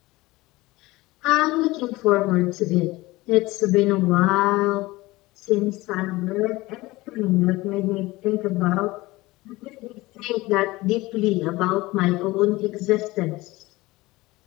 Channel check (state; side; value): quieter; right; 20.2 dB